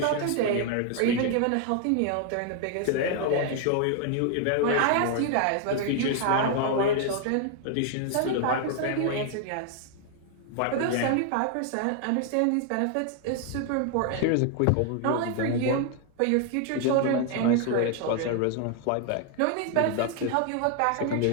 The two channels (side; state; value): both; different; correlation 0.00